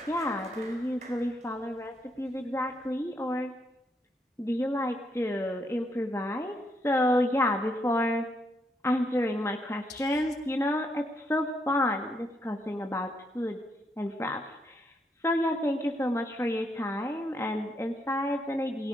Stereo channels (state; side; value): normal; both; correlation 0.77